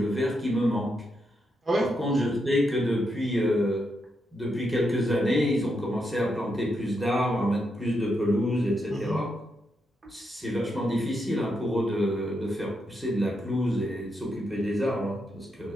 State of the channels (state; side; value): normal; both; correlation 0.82